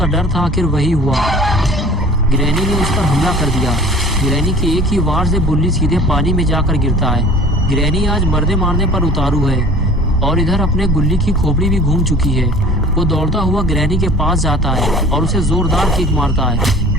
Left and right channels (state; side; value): normal; both; correlation 0.45